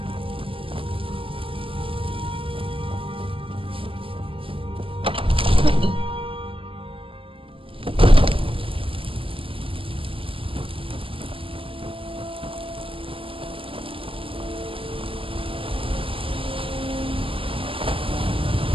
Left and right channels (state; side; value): late; left; 0.26 ms